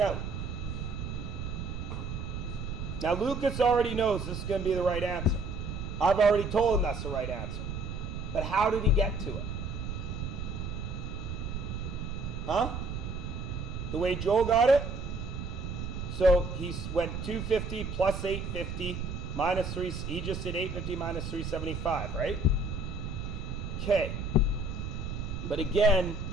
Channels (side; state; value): right; noise; rumble, 5 dB below the sound